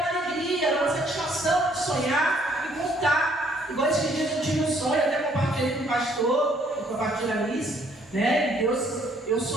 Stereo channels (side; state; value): both; normal; correlation 0.64